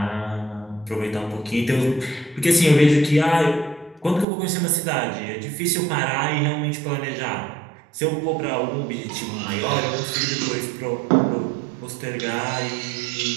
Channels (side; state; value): left; drops out; at 4.2 s